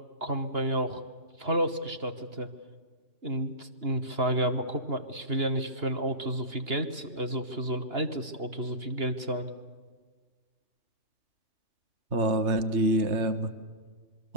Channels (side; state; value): left; late; 2.9 ms